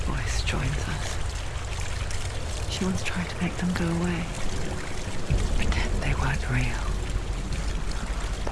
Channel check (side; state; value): both; identical; correlation 1.00